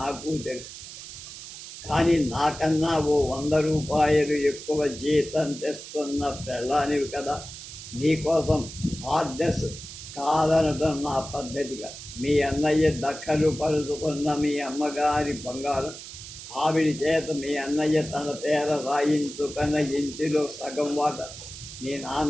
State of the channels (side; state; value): right; noise; hiss, 12 dB below the sound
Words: తెలుసు. కానీ నాకన్నా ఓ 100 రూపాయలు ఎక్కువ జీతం తెస్తున్న పెళ్ళానివి కదా. నీకోసం ఆర్డర్స్ కాదనడం నా పద్ధతిగా. మీ అన్నయ్య దక్కలు పరుచుకున్న మీ అమ్మగారి బంగారం, ఆవిడ చేత మీ అన్నయ్య తన పేర రాయించుకున్న ఇంటిలో సగం వాట, మీ